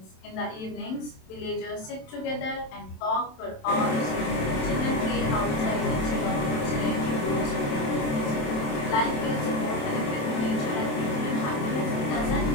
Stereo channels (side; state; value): right; late; 27 ms